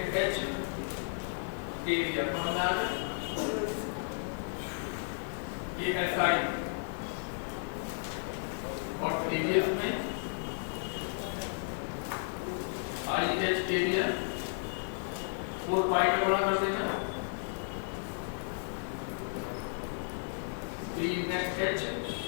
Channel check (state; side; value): silent; right; digital silence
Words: H area. समझ आ गया? ये SI और प्रीवियस में IH एरिया 4 पाई में गुणा कर देना। B नेट H